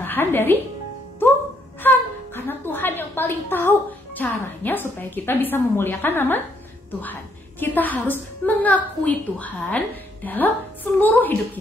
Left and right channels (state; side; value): normal; both; correlation 0.72